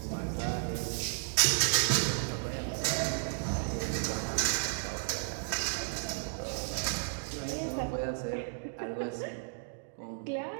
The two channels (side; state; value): left; silent; digital silence